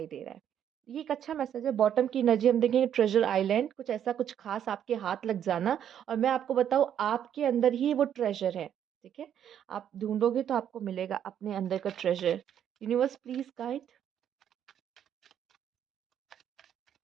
दे रहा है। ये एक अच्छा मैसेज है। बॉटम की एनर्जी हम देखेंगे ट्रेजर आइलैंड, कुछ ऐसा कुछ खास आपके हाथ लग जाना, और मैं आपको बताऊँ आपके अंदर ही वो ट्रेजर है, ठीक है? आप ढूँढोगे तो आपको मिलेगा अपने अंदर का treasure. Universe please guide.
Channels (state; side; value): quieter; left; 9.6 dB